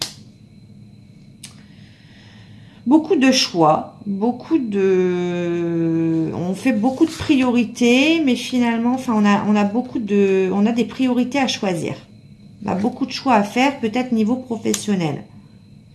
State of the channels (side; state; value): both; identical; correlation 1.00